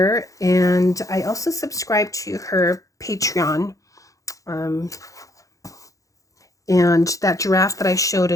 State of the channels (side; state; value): right; late; 0.16 ms